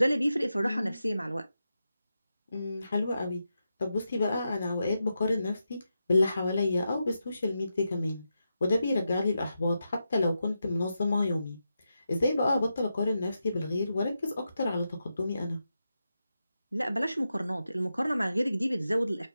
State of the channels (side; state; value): both; inverted; correlation -0.88